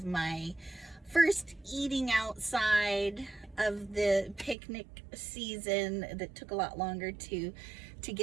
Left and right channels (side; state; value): left; drops out; at 4.5 s